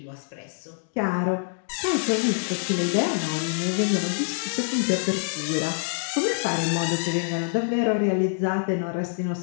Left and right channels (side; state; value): right; silent; digital silence